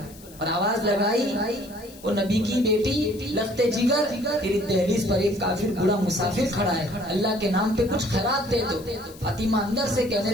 اور آواز لگائی, وہ نبی کی بیٹی لخت جگر, تیری دہلیز پر ایک کافر بڑا مسافر کھڑا ہے, اللہ کے نام پہ کچھ خیرات دے دو. فاطمہ اندر سے کہنے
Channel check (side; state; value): left; noise; hiss, 21 dB below the sound